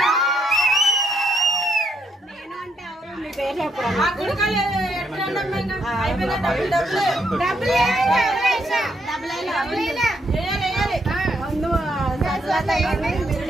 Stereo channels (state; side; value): normal; both; correlation 0.75